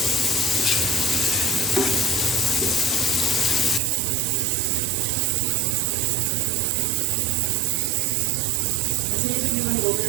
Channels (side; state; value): left; drops out; at 3.8 s